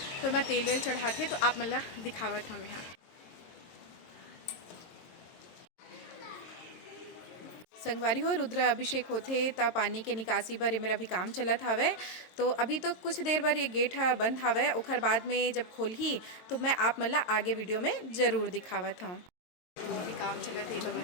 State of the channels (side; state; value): right; late; 22 ms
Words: तो मैं तेल वेल चढ़ाते। तो आप मन ला दिखावत हमें यहाँ संगवारी हो रुद्र अभिषेक होते तब पानी के निकासी बर मेरा भी काम चलत हवे। तो अभी तो कुछ देर बार ये गेट बंद हवे उखर बाद में जब खोलही तो मैं आप मन ला आगे वीडियो में जरूर दिखावत हूँ। अभी काम चलत है तो